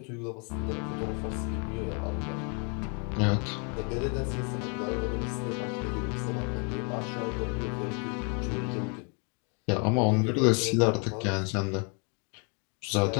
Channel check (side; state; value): right; quieter; 37.3 dB